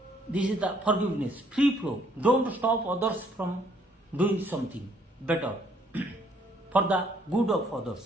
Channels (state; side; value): normal; both; correlation 0.65